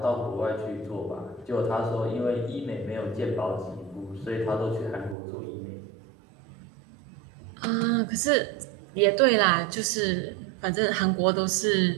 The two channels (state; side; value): drops out; left; at 5.2 s